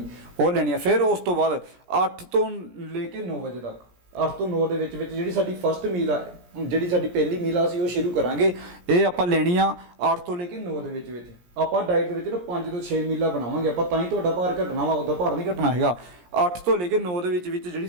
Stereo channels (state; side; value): late; left; 17 ms